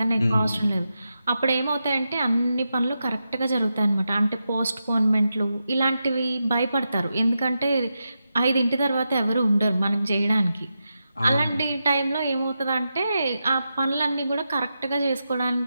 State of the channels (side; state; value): both; inverted; correlation -0.88